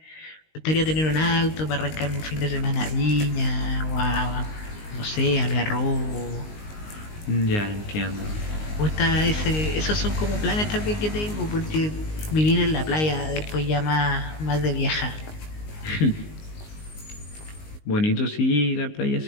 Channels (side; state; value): right; late; 19 ms